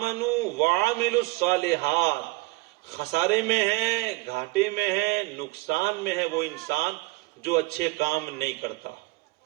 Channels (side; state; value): left; quieter; 24.5 dB